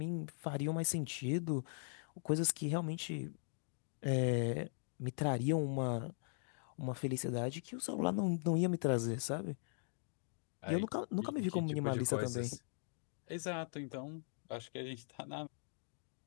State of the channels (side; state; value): right; silent; digital silence